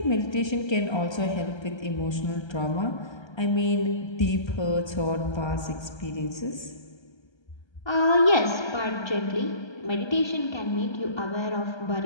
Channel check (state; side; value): late; right; 1.3 ms